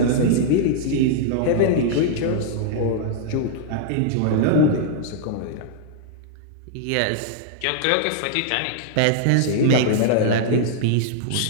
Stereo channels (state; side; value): different; both; correlation -0.01